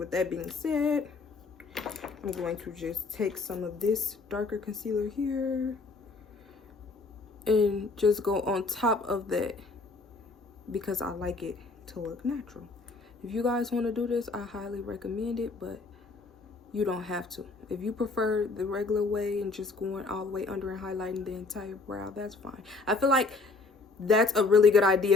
that being said, I'm going to just take some of this darker concealer here and just go on top of that because I like it to look natural. If you guys want to do this, I highly recommend it, but you don't have to. If you prefer the regular way and just going all the way under and highlighting the entire brow, that's fine. I feel like that's a really good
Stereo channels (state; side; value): quieter; right; 3.8 dB